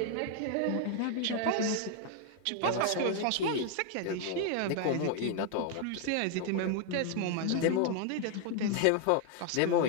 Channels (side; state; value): both; different; correlation 0.00